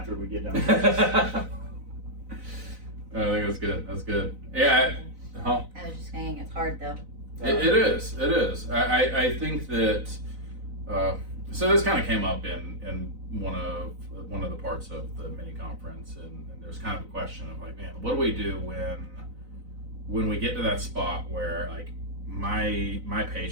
we get done. I think that's good. That's good. Yeah. I was just saying it's hard though. It is. It is. I think that. So this kind of came up in one of the parts of the mini conference, and there's kind of a question of like, man, what do we do when we get to that spot where like my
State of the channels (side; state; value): left; late; 4.0 ms